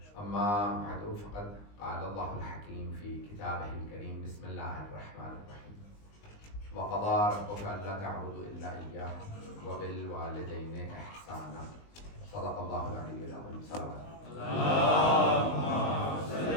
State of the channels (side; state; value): right; late; 19 ms